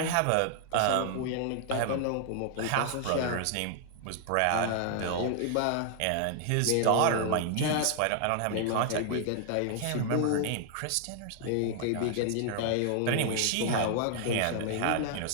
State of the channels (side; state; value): both; different; correlation 0.00